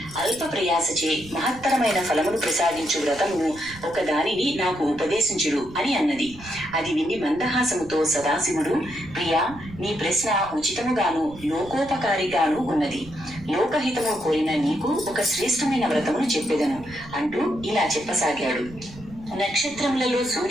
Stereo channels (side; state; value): right; noise; rumble, 18 dB below the sound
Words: అల్ప ప్రయాసచే మహత్తరమైన ఫలమును ప్రసాదించు వ్రతమును ఒక దానిని నాకు ఉపదేశించుడు అని అన్నది. అది విని మందహాసముతో సదాశివుడు, ప్రియా, నీ ప్రశ్న ఉచితముగాను లోకోపకారిగాను ఉన్నది. లోకహితము కోరిన నీకు ఒక శ్రేష్టమైన వ్రతమును చెప్పెదను అంటూ ఇలా చెప్పసాగాడు. నక్షత్రములలో